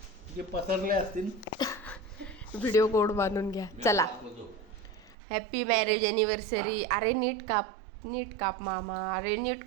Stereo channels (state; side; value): drops out; left; at 5.2 s